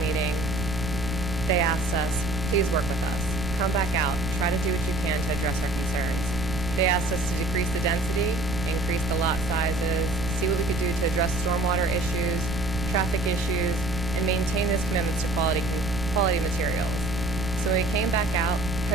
they asked us, please work with us. Come back out, try to do what you can to address our concerns. They asked us to decrease the density, increase the lot sizes, see what we could do to address stormwater issues, traffic issues, and maintain those commitments to quality materials. So when we came back out,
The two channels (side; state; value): right; noise; rumble, 7 dB below the sound